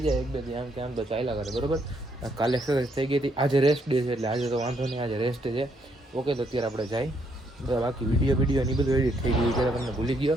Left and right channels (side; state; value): both; normal; correlation 0.73